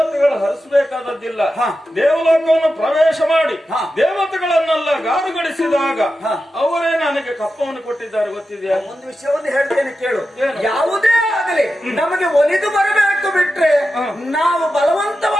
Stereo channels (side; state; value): both; normal; correlation 0.91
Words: ಹರಿಸಬೇಕಾದದ್ದಿಲ್ಲ. ದೇವಲೋಕವನ್ನು ಪ್ರವೇಶ ಮಾಡಿ ದೇವತೆಗಳನ್ನೆಲ್ಲ ಗಾರುಗಳಿಸಿದಾಗ ಅವರೇ ನನಗೆ ಕಪ್ಪವನ್ನು ಕೊಟ್ಟಿದ್ದಾರೆ. ಗೊತ್ತಿದೆಯಾ? ಒಂದು ವಿಷಯವನ್ನು ಹೇಳ್ತೇನೆ ಕೇಳು. ಯಾವುದೇ ಆಗಲಿ ನಮಗೆ ಒಲಿದು ಬರಬೇಕು ಬಿಟ್ರೆ ನಾವು